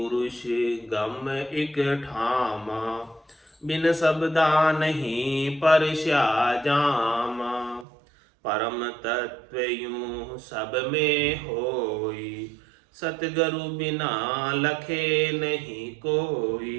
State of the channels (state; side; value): drops out; left; at 7.9 s